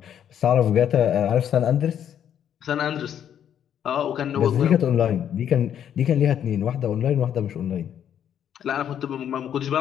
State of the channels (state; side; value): quieter; right; 9.5 dB